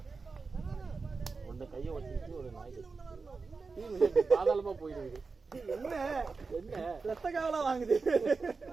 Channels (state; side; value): quieter; left; 4.4 dB